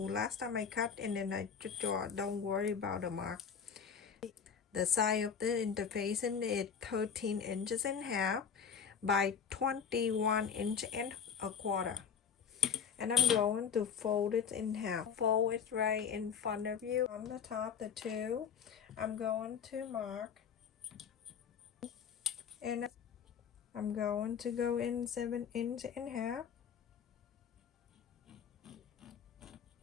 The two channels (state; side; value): quieter; right; 7.0 dB